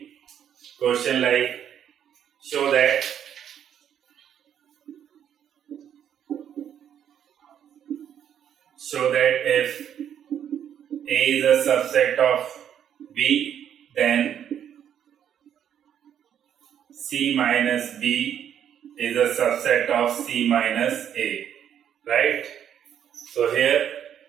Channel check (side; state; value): left; quieter; 9.4 dB